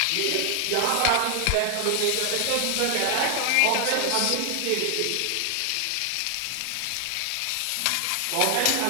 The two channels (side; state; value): both; different; correlation 0.00